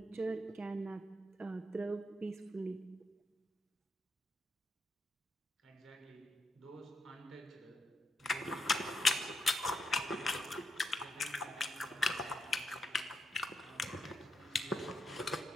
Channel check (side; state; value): both; normal; correlation 0.81